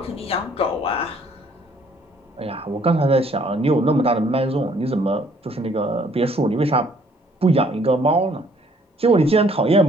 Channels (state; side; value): normal; both; correlation 0.62